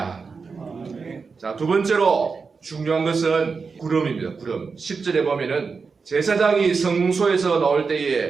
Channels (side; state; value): left; quieter; 4.9 dB